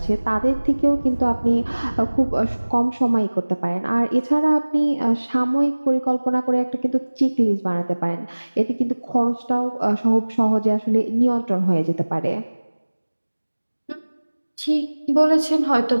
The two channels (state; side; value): inverted; both; correlation -1.00